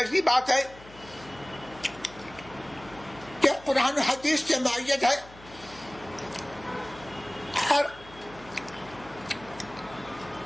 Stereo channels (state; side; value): noise; left; hum, 21 dB below the sound